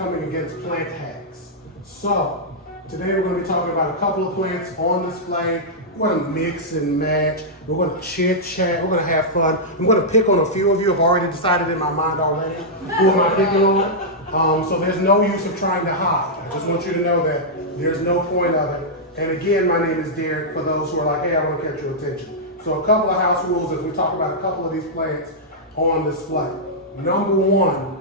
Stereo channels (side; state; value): both; normal; correlation -0.09